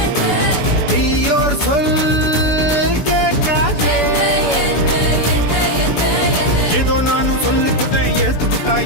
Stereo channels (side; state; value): left; late; 7.0 ms